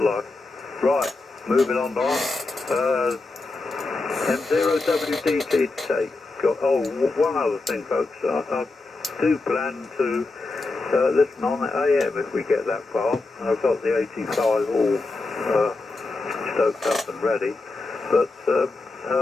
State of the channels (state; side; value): quieter; right; 3.4 dB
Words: life. Right, moving on now. M0WDT to take. One other thing, folks. I do plan to listen on at AM if we get that far. I've got the 85 all stoked up and ready, but